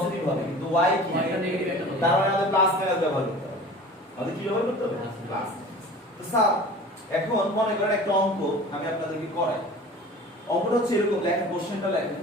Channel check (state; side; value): normal; both; correlation 0.41